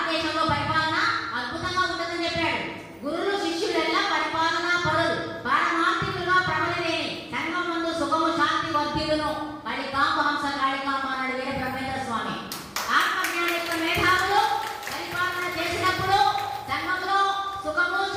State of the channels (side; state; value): both; identical; correlation 1.00